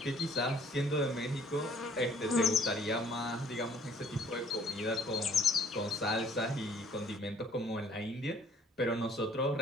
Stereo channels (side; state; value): both; normal; correlation 0.57